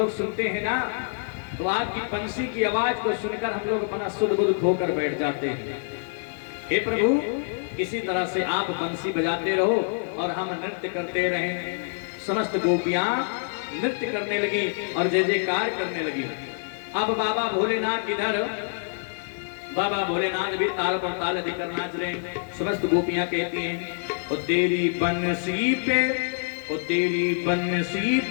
सुनते हैं ना तो आपकी बंसी की आवाज को सुनकर हम लोग अपना सुध बुध खोकर बैठ जाते हैं। हे प्रभु, इसी तरह से आप बंसी बजाते रहो और हम नृत्य करते रहें। समस्त गोपियां नृत्य करने लगी और जय जयकार करने लगी। अब बाबा भोलेनाथ इधर, बाबा भोलेनाथ भी ताल पर ताल देकर नाच रहे हैं। समस्त गोपियां कहती हैं, ओ तेरी बंसी पे, ओ तेरी बंसी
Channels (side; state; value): right; silent; digital silence